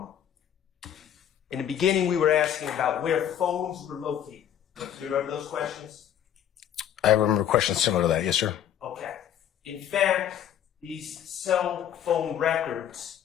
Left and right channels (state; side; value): quieter; right; 10.0 dB